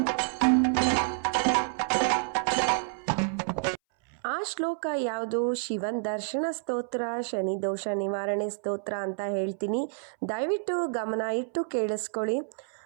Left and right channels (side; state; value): left; silent; 59 dB below the other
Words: ಆ ಶ್ಲೋಕ ಯಾವುದು? ಶಿವನ್ ದರ್ಶನ ಸ್ತೋತ್ರ, ಶನಿದೋಷ ನಿವಾರಣೆ ಸ್ತೋತ್ರ ಅಂತ ಹೇಳ್ತೀನಿ. ದಯವಿಟ್ಟು ಗಮನ ಇಟ್ಟು ಕೇಳಿಸ್ಕೊಳ್ಳಿ.